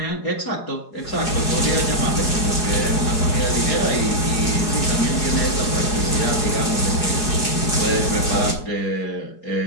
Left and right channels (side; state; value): right; late; 4.8 ms